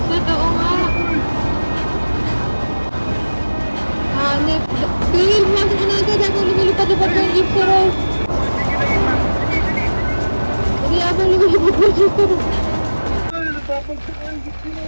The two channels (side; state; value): both; inverted; correlation -1.00